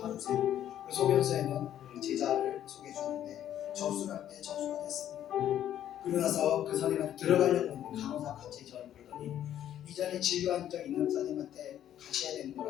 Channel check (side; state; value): right; quieter; 11.1 dB